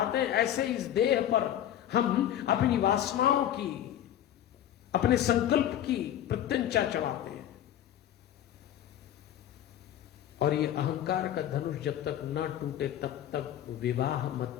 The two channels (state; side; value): quieter; right; 11.3 dB